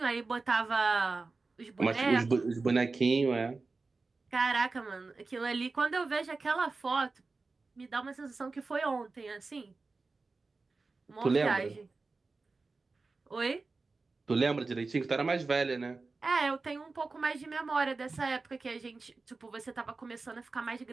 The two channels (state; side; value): quieter; left; 3.9 dB